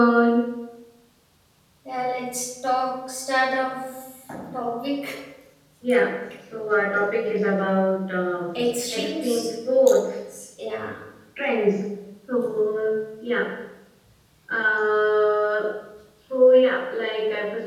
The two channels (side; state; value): both; identical; correlation 1.00